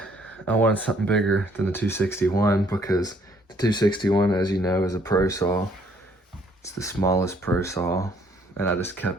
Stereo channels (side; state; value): both; normal; correlation 0.64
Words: I wanted something bigger than the 261 because the 261, as you know, is a pro saw. It's the smallest pro saw, and I just